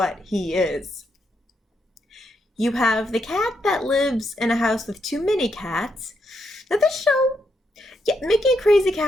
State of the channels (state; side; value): normal; both; correlation 0.79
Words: he is. You have the cat that lives in a house with too many cats. Now this show, Yeah, making a crazy